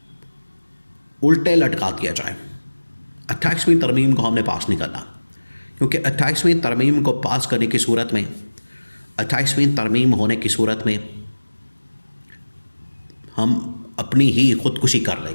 उल्टे लटका दिया जाए, 28वीं तरमीम को हमने पास नहीं करना। क्योंकि 28वीं तरमीम को पास करने की सूरत में, 28वीं तरमीम होने की सूरत में हम अपनी ही ख़ुदकुशी कर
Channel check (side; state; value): both; inverted; correlation -1.00